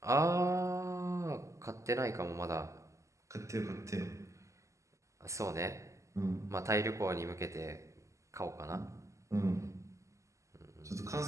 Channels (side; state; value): left; late; 0.15 ms